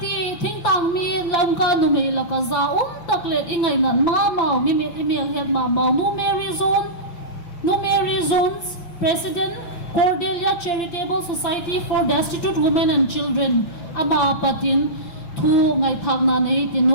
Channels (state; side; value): late; right; 5.8 ms